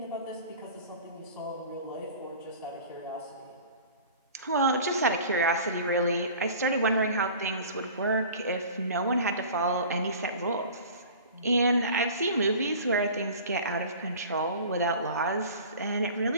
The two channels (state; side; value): inverted; both; correlation -0.42